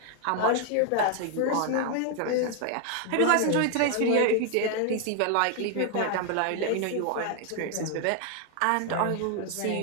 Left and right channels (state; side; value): different; both; correlation 0.00